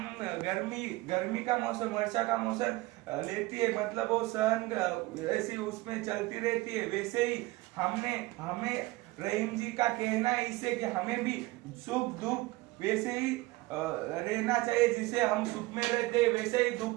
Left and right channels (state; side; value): quieter; left; 20.3 dB